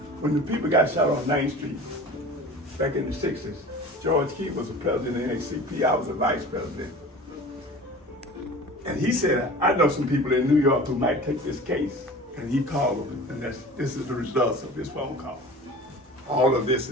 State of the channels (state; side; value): normal; both; correlation 0.39